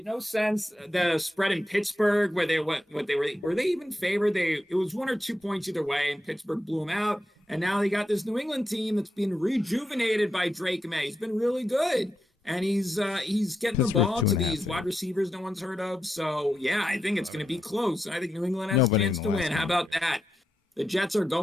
no sense the spread in Pittsburgh where they were they even favored? It was 1 or 2 points either way, and Pittsburgh blew them out. And now they got this New England team that's been rejuvenated by Drake May. He's been really good, and he's getting the ball to these wide receivers no one's heard of. So yeah, I think it's going to be close. I think New England has a chance to win. How about that? The Jets are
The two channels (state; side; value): normal; both; correlation 0.86